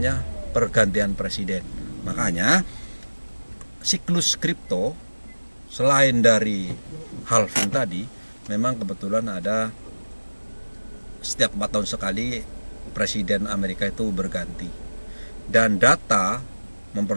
pergantian presiden. Makanya siklus kripto selain dari halving tadi, memang kebetulan ada setiap 4 tahun sekali presiden Amerika itu berganti. Dan data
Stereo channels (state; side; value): inverted; both; correlation -1.00